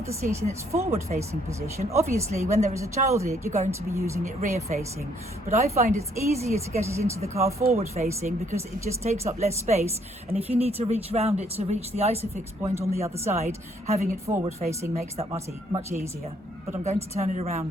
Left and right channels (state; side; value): normal; both; correlation 0.67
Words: the seat in its forward facing position. Obviously when there is a child in it, you're going to be using it rear facing, but I find it's easier to get it into the car forward facing because it just takes up less space, and if you need to reach round it to reach the ISOfix point on the other side, having it forward facing makes that much easier. But I'm going to turn it